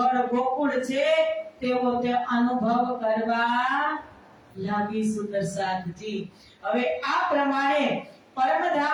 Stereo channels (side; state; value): both; identical; correlation 1.00